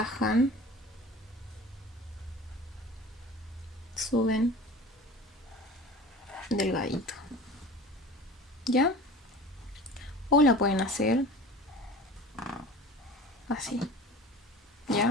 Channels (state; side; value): normal; both; correlation 0.39